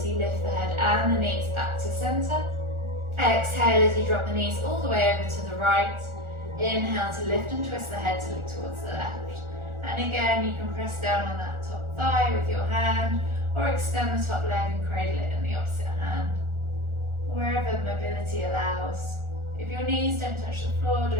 you lift the head and the knees back to center. Exhale as you drop the knees all the way over to the right. Inhale to lift and twist the head to look towards the left. And again, you can press down on that top thigh with your hand, or extend the top leg and cradle it in the opposite hand. Wherever mobility allows. If your knees don't touch the floor,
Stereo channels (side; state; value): left; late; 1.4 ms